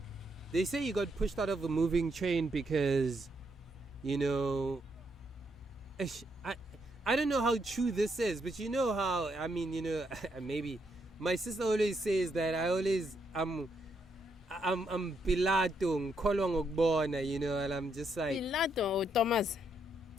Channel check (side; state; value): both; normal; correlation 0.77